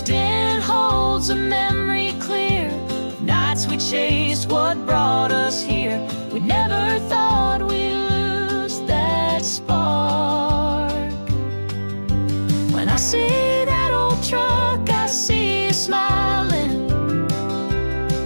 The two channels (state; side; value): inverted; both; correlation -1.00